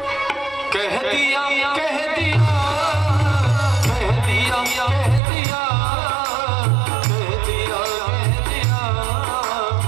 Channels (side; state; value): left; drops out; at 5.2 s